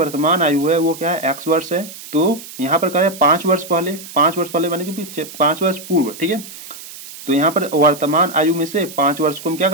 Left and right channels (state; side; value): noise; right; hiss, 15 dB below the sound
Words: आयु है वो क्या है, एक्स वर्ष है। तो यहाँ पर कह रहे हैं 5 वर्ष पहले, 5 वर्ष पहले माने कि 5 वर्ष पूर्व। ठीक है, तो यहाँ पर वर्तमान आयु में से 5 वर्ष को हम क्या